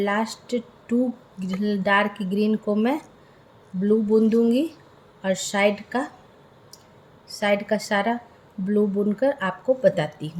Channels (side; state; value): both; identical; correlation 1.00